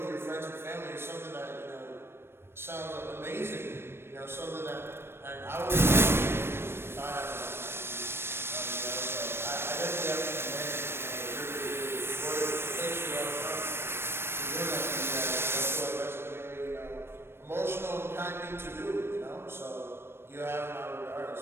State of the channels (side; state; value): left; late; 0.12 ms